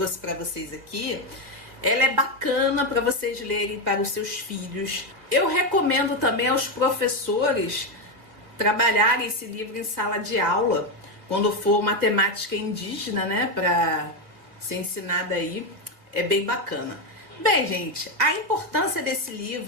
para vocês aqui, ela é bacana para vocês lerem para os seus filhos. Eu recomendo também aos professores trabalharem esse livro em sala de aula, quando for uma temática indígena, né, para ser ensinada aí, é bem bacana. Bem, gente, a importância desse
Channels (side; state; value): left; late; 2.2 ms